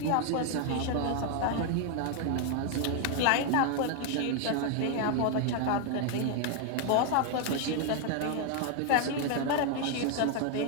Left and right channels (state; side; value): different; both; correlation 0.00